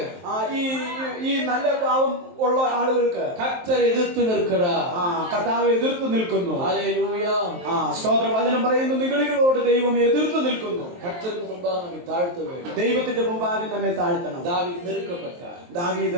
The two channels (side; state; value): left; late; 23 ms